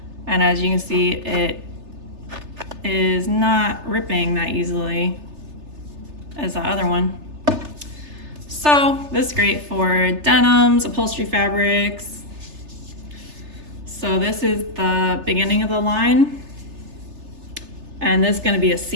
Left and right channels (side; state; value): left; late; 3.3 ms